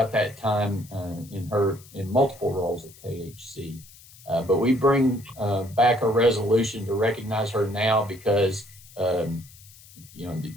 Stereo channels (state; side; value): noise; left; hiss, 22 dB below the sound